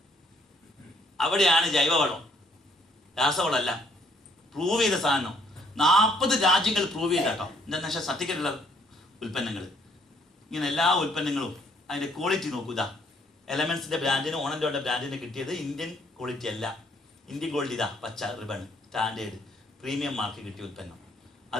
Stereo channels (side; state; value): both; normal; correlation 0.65